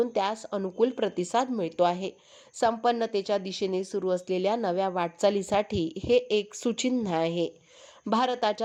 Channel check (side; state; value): both; identical; correlation 1.00